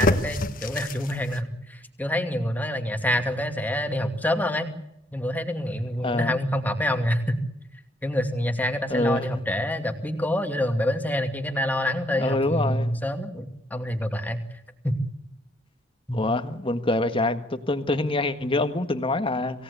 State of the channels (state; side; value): normal; both; correlation 0.68